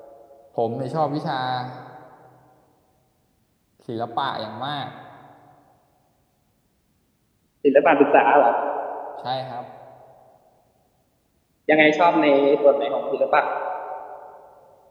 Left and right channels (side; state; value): both; identical; correlation 1.00